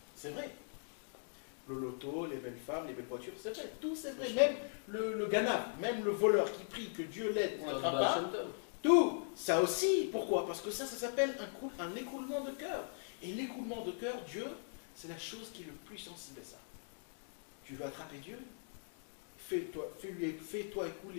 C'est vrai. Le loto, les belles femmes, les belles voitures, c'est vrai. Tout, c'est vrai. Même le ganav, même le voleur qui prie que Dieu l'aide pour n'attrape pas. Tout, ça aussi. Pourquoi? Parce que ça s'appelle un écoulement de cœur. Et l'écoulement de cœur, Dieu, c'est la chose qui est le plus sensible à ça. Tu veux attraper Dieu? Fais-toi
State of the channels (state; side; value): silent; right; digital silence